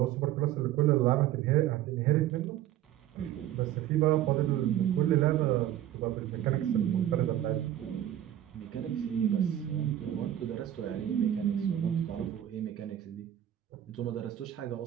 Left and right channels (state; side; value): quieter; left; 12.2 dB